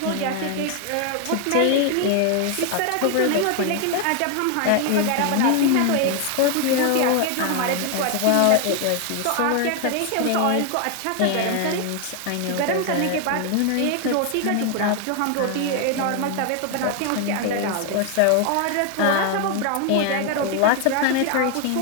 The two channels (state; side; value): different; both; correlation 0.01